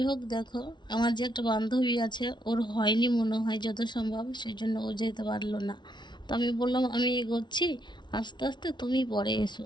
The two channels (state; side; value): late; right; 0.21 ms